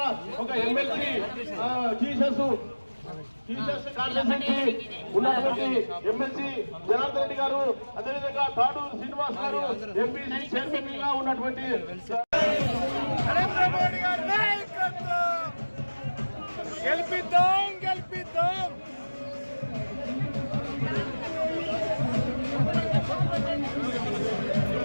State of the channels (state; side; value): inverted; both; correlation -1.00